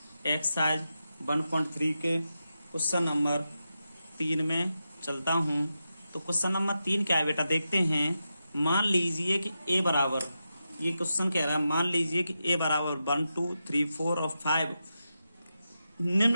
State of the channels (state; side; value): inverted; both; correlation -0.89